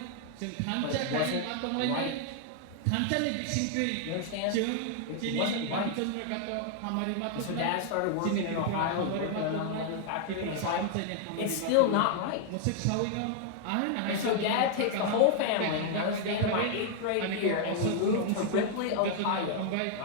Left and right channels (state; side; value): different; both; correlation 0.00